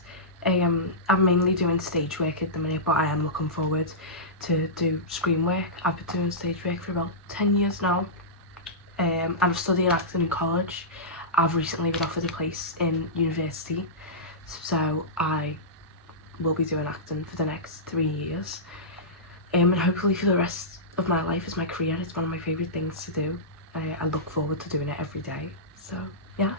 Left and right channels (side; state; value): both; normal; correlation -0.16